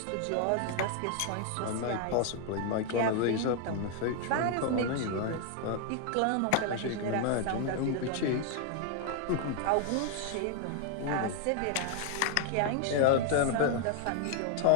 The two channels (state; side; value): different; both; correlation 0.00